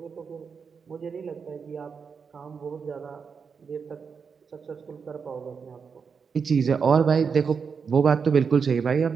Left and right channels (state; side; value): quieter; left; 5.9 dB